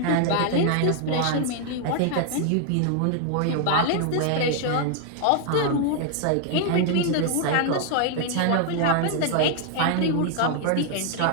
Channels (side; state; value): both; different; correlation 0.00